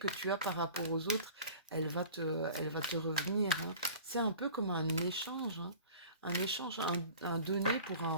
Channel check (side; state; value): both; inverted; correlation -0.43